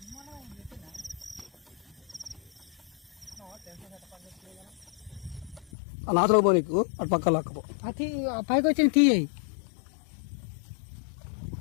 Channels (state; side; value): drops out; right; at 5.7 s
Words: నాతో పో, నీకు అటు పక్క లాక్కపో. పైకి వచ్చిన తీసేయి.